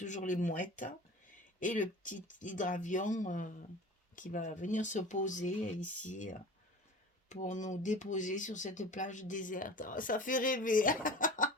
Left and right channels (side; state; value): both; normal; correlation 0.38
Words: les mouettes, et le petit hydravion qui va venir se poser ici pour nous déposer sur cette plage déserte. Oh, ça fait rêver.